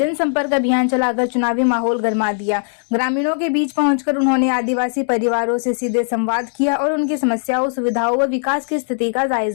अभियान चलाकर चुनावी माहौल गरमा दिया। ग्रामीणों के बीच पहुंचकर उन्होंने आदिवासी परिवारों से सीधे संवाद किया और उनकी समस्याओं, सुविधाओं व विकास की स्थिति का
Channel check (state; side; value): silent; right; digital silence